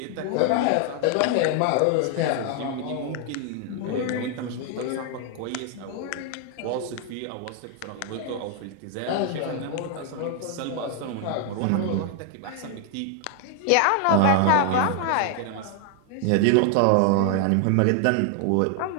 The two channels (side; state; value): both; different; correlation 0.00